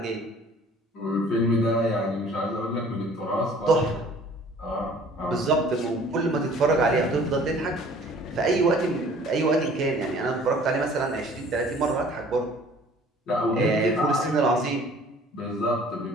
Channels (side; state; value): both; normal; correlation 0.52